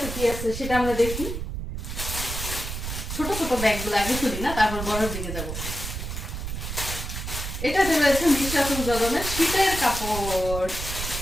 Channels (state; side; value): noise; right; rumble, 6 dB below the sound